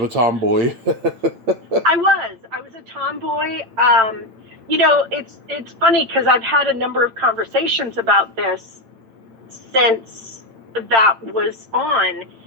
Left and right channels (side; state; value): left; late; 8.9 ms